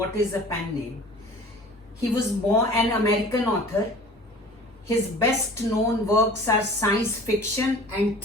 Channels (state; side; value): normal; both; correlation 0.44